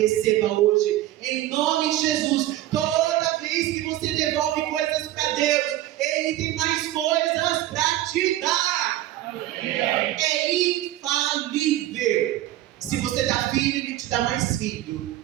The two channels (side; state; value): left; quieter; 14.5 dB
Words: hoje. Em nome de Jesus. Toda vez que você devolve coisas para Deus, Ele tem mais coisas para te dar. É infalível. Se você dá filho, Ele te dá mais filho.